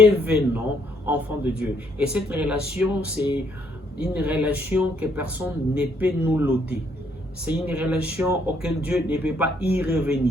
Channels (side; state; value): both; normal; correlation 0.69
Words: enfants de Dieu. Et cette relation, c'est une relation que personne ne peut nous l'ôter. C'est une relation auquel Dieu ne peut pas y